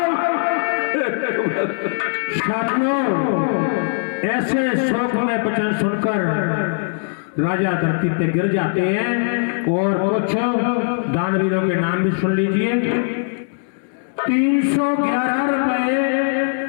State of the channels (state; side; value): silent; right; 66 dB below the other